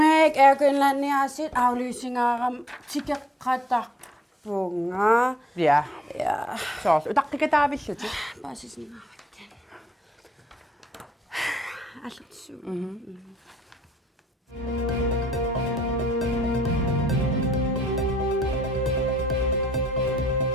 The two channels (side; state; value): both; normal; correlation 0.72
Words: erkynlänniasit aflysingaaram tikkeqatarpunga. Ja. Ja. Så utaqqikataavilluti. Basisningaarakkan. Allutsu.